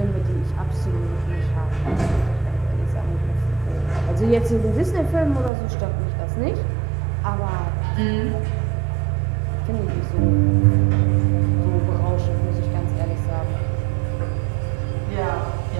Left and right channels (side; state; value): left; drops out; at 5.5 s